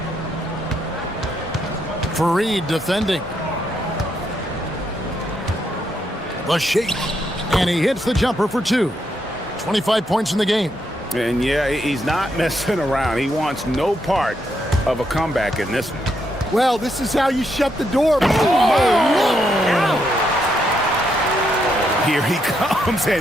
Fareed defending. The shake. And he hits the jumper for 2. 25 points in the game. And yeah, he's not messing around. He wants no part of a comeback in this one. Well, this is how you shut the door. Here he comes,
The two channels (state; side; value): normal; both; correlation 0.78